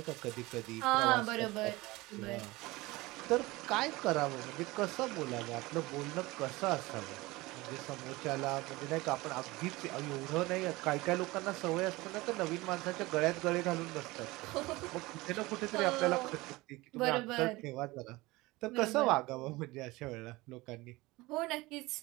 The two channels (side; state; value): left; quieter; 21.1 dB